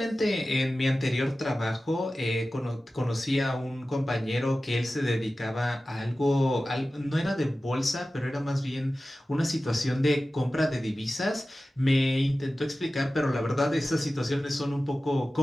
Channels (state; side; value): normal; both; correlation 0.95